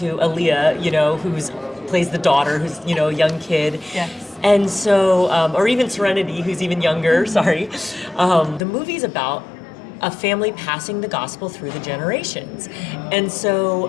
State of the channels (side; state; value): right; drops out; at 8.6 s